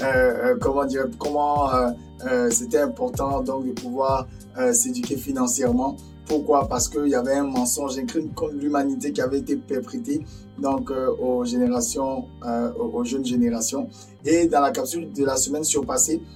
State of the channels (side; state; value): both; identical; correlation 1.00